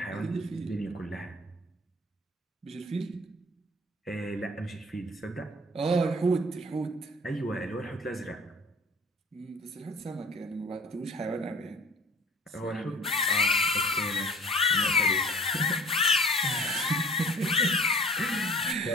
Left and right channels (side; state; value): both; normal; correlation 0.48